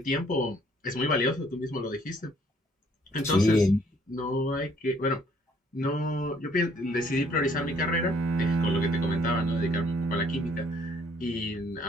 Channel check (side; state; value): both; normal; correlation 0.63